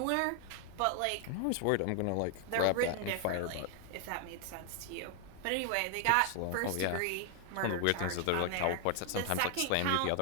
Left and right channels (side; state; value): both; different; correlation 0.00